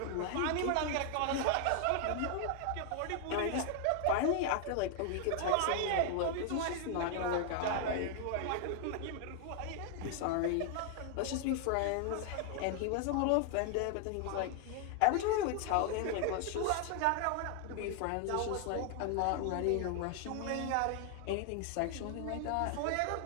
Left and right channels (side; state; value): both; different; correlation 0.00